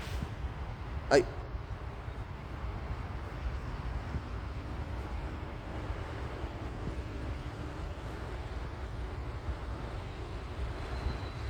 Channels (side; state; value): both; identical; correlation 1.00